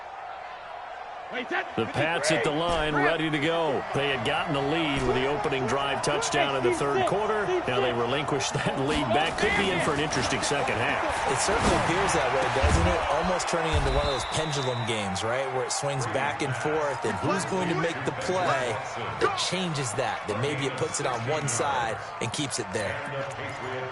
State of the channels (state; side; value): identical; both; correlation 1.00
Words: The Pats at the line, ready to go. They had gotten the lead with the opening drive touchdown in the 3rd quarter. Now they relinquish that lead back. Could be in for an interesting second half. It certainly appears that way, doesn't it? Almost turning into one of those pendulum games, right, where it swings back and forth, and who's going to make the play that changes that maybe it puts it on one side and keeps it there.